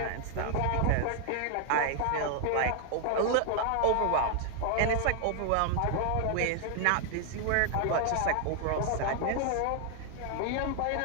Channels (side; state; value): both; different; correlation 0.00